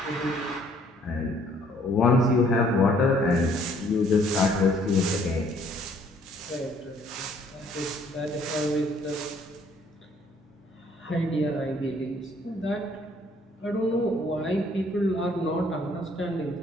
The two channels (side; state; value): both; normal; correlation 0.62